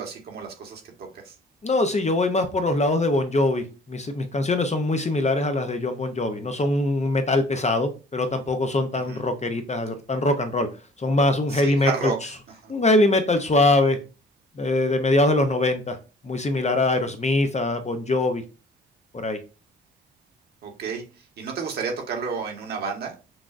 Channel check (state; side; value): normal; both; correlation 0.52